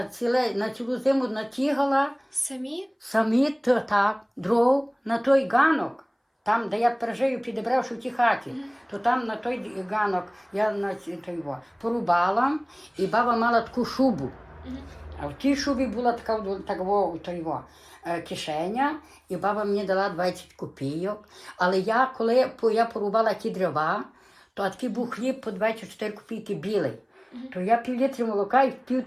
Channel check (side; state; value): both; identical; correlation 1.00